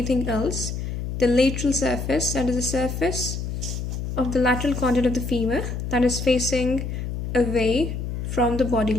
else. The lateral surface, that is the surface of the lateral condyle of the femur that is facing away from the body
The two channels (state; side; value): noise; left; hum, 4 dB below the sound